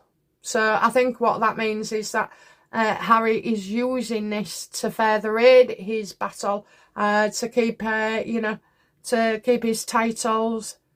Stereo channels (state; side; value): identical; both; correlation 1.00